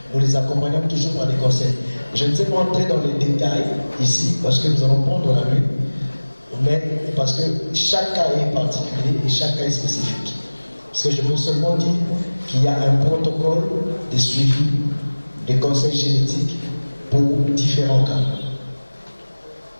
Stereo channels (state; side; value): inverted; both; correlation -1.00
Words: nous les accompagnons toujours par des conseils. Je ne sais pas entrer dans les détails ici, parce que nous allons prendre la nuit, mais parce que chaque cas est particulier et chaque cas est spécifique. Parce que je veux seulement dire qu'il y a un protocole de suivi des conseils génétiques pour différents cas.